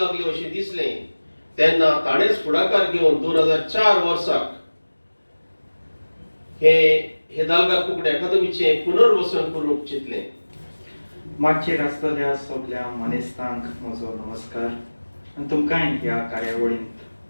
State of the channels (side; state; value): both; inverted; correlation -1.00